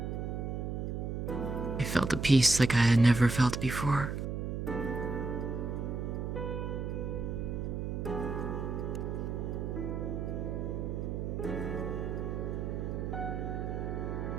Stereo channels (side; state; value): right; noise; hum, 3 dB below the sound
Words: I felt a peace like I had never felt before.